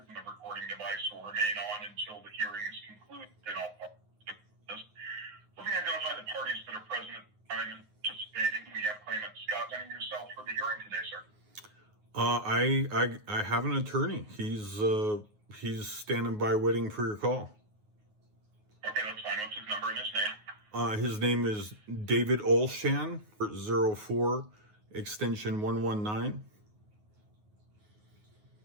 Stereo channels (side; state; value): left; late; 9.5 ms